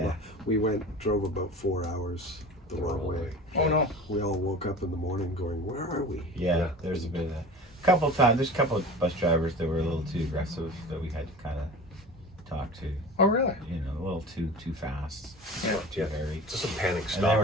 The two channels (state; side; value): normal; both; correlation 0.36